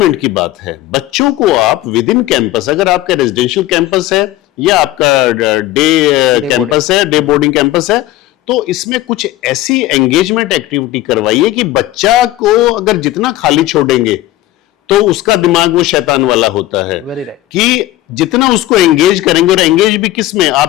की बात है। बच्चों को आप विद इन कैंपस, अगर आपका रेजिडेंशियल कैंपस है या आपका डे कैंपस है, डे बोर्डिंग कैंपस है, तो इसमें कुछ ऐसी एंगेजमेंट एक्टिविटी करवाइए कि बच्चा को अगर जितना खाली छोड़ेंगे तो उसका दिमाग वो शैतान वाला होता है। कि जितना उसको एंगेज करेंगे, और एंगेज भी किस में,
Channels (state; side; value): quieter; right; 15.8 dB